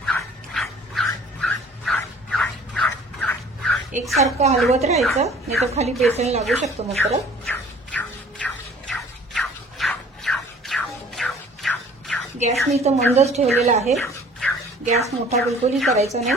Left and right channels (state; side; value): normal; both; correlation 0.51